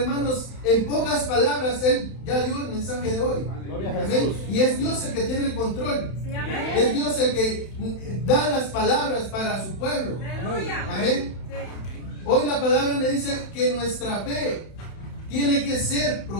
en pocas palabras Él ya dio el mensaje de hoy. Amén. Y es Dios el que tiene el control. Es Dios el que da las palabras para su pueblo. Amén. Hoy la palabra me dice que nuestra fe tiene que ser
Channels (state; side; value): late; right; 31 ms